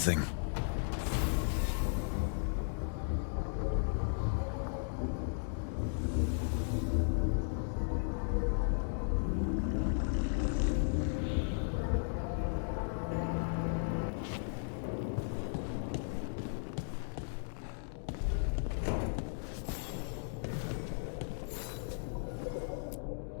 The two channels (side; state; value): right; silent; digital silence